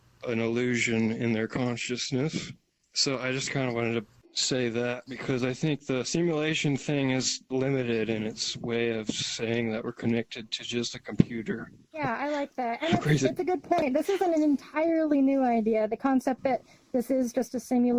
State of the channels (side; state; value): both; identical; correlation 1.00